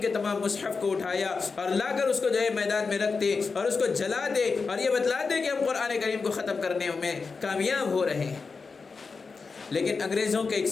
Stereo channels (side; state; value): right; quieter; 4.7 dB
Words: کے تمام مصحف کو اٹھایا اور لا کر اس کو جو ہے میدان میں رکھتے اور اس کو جلاتے اور یہ بتلاتے کہ ہم قرآن کریم کو ختم کرنے میں کامیاب ہو رہے ہیں۔ لیکن انگریزوں کے ایک